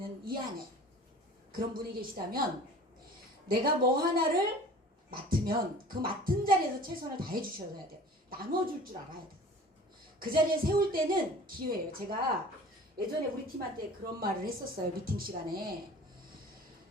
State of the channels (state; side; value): normal; both; correlation 0.44